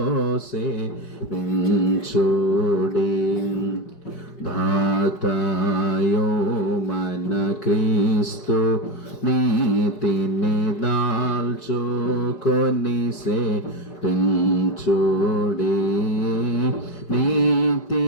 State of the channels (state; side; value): late; right; 5.2 ms